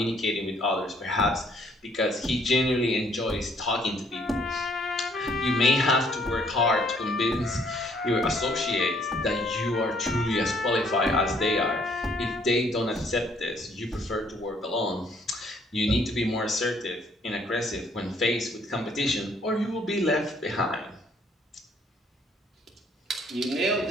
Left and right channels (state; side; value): normal; both; correlation 0.64